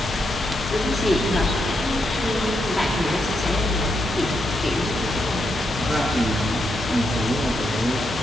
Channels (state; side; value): normal; both; correlation 0.81